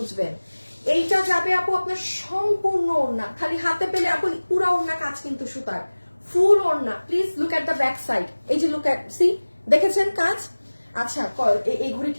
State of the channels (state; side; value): inverted; both; correlation -1.00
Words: এইটা যাবে আপু আপনার সম্পূর্ণ ওড়না, খালি হাতে পেলে আপু পুরো ওড়না কাজ কিন্তু সুতার, ফুল ওড়না। Please look at the back side, এই যে লুক এট, সি, দেখেছেন কাজ? আচ্ছা, এই ঘড়ি